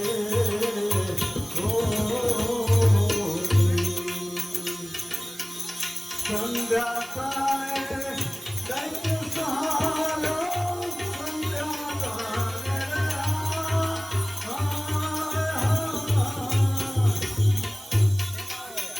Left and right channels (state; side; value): noise; right; hiss, 17 dB below the sound